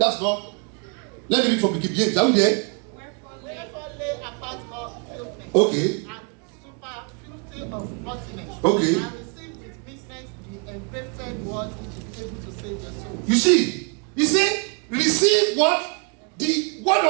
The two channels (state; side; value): quieter; left; 35.5 dB